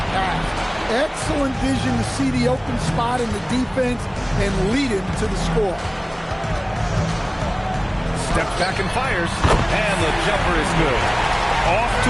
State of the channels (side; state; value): both; identical; correlation 1.00